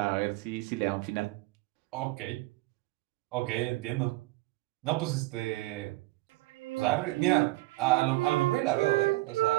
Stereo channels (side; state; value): left; quieter; 20.2 dB